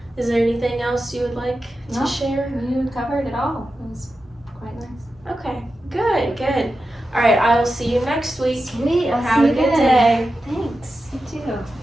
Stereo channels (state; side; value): normal; both; correlation 0.91